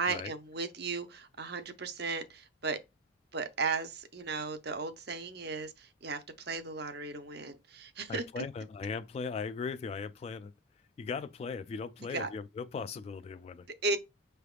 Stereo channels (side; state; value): both; normal; correlation 0.03